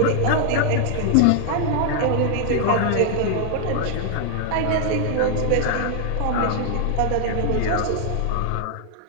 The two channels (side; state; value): both; different; correlation 0.00